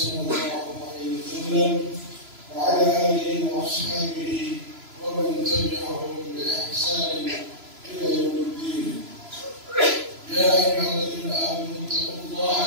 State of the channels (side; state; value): left; late; 3.0 ms